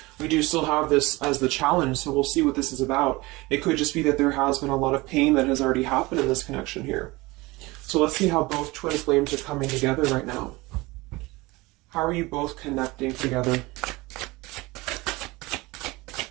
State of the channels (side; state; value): left; quieter; 22.1 dB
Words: We do still have this as the challenge, so we'll see what this is about. It could just be that there has been a lot of pain that has already happened in this connection here. So let's see how both twin flames are coming together right now. How are you both connecting together?